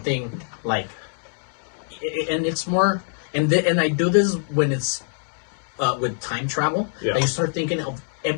like, and it's more, and I do this when it's with time travel. Yeah. You start thinking of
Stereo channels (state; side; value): silent; right; digital silence